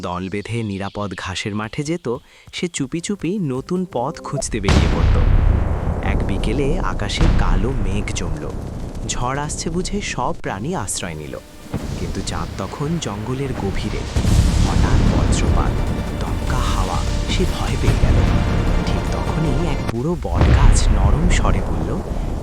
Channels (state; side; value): identical; both; correlation 1.00